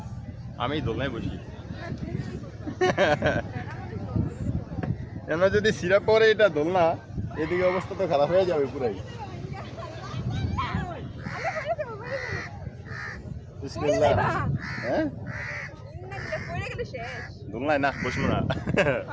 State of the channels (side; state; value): both; identical; correlation 1.00